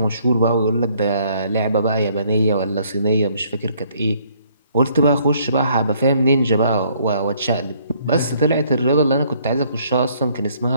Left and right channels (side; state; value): both; inverted; correlation -0.65